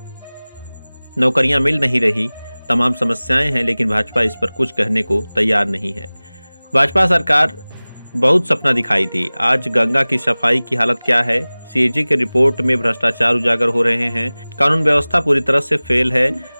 नौकरियां मिल नहीं रही, तमाम समस्याएं हैं, लेकिन भाजपा इस पर कुछ कहने को तैयार नहीं है। भाजपा सरकार बहुत सपना दिखाई थी। आज गंगा की सफाई की हालत क्या है? सीएजी की रिपोर्ट में भ्रष्टाचार उजागर हो रहे हैं। कानून व्यवस्था पूरी तरह से फेल है।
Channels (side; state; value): both; inverted; correlation -0.99